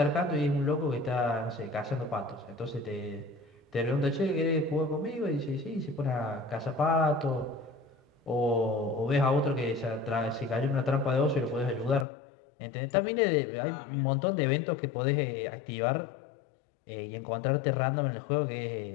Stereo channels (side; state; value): right; drops out; at 12.1 s